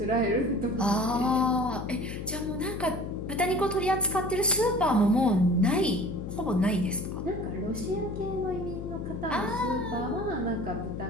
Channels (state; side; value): noise; left; hum, 8 dB below the sound